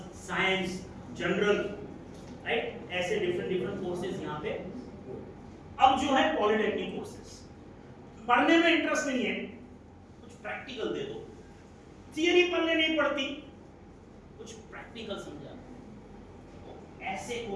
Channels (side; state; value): both; identical; correlation 1.00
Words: science, general, right, ऐसे डिफरेंट डिफरेंट कोर्सेज यहाँ पे। अब जो है पॉलिटेक्निक कोर्सेज, पढ़ने में इंटरेस्ट नहीं है, कुछ प्रैक्टिकल दे दो, थियरी पढ़ने नहीं पड़ती, कुछ प्रैक्टिकल समझा, ऐसे